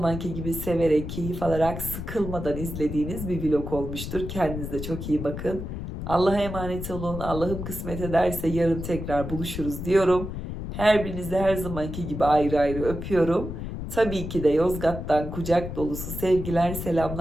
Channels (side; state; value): left; noise; rumble, 7 dB below the sound